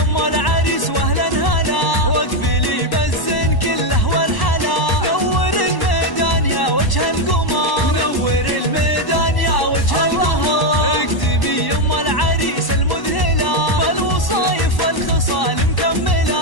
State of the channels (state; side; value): late; right; 1.1 ms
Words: العريس واهلا هلا، واقبلي بالزين كله والحلا. نور الميدان يا وجه القمر، نور الميدان يا وجه القمر. اقدمي يا العريس المذهلة، بالوصايف والخصال